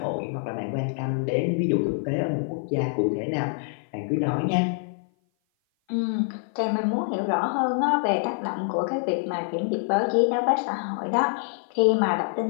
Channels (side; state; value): right; silent; 56 dB below the other